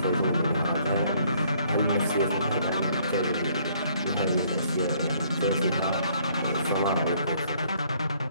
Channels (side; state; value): both; inverted; correlation -0.64